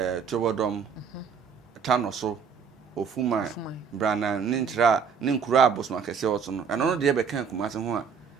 Tobodom Tano so Ofuma Brana ne nkyira ne nkuro a abosoma kɛse wɔ so no ɛno no deɛ bɛka Kumasi ho a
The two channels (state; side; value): quieter; left; 6.3 dB